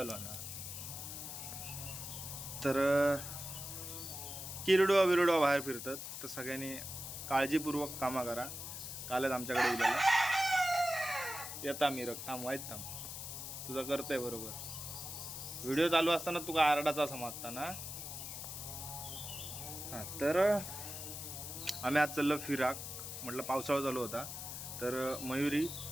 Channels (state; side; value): noise; left; hiss, 7 dB below the sound